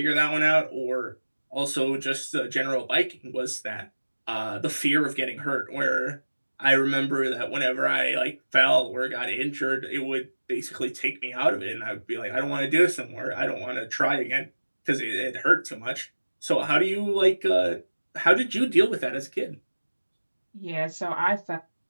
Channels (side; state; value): both; inverted; correlation -1.00